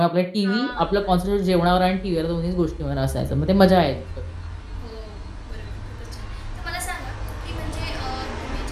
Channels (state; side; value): identical; both; correlation 1.00